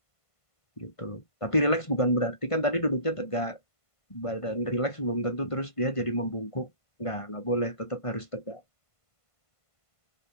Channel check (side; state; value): right; late; 1.5 ms